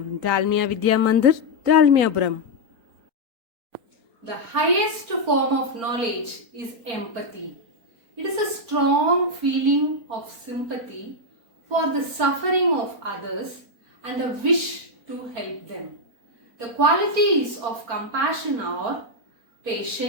Dalmia Vidya Mandir, Dalmiapuram. The highest form of knowledge is empathy. It is a strong feeling of sympathy for the suffering of others and a wish to help them. The qualities of compassion are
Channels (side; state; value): left; late; 4.4 ms